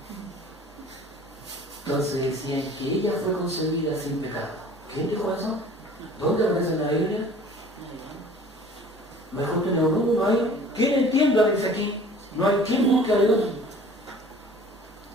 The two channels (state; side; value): normal; both; correlation 0.48